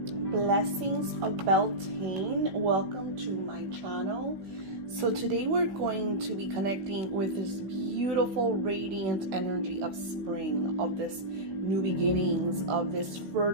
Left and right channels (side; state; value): left; late; 15 ms